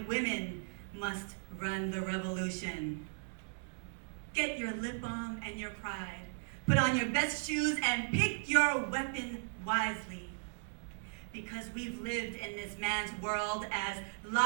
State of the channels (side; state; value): left; silent; digital silence